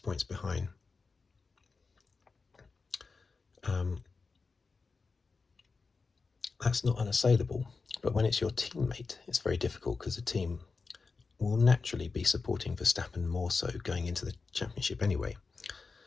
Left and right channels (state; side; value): quieter; right; 4.4 dB